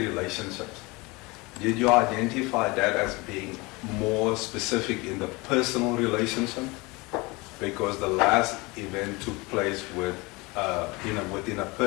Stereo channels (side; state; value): right; quieter; 24.9 dB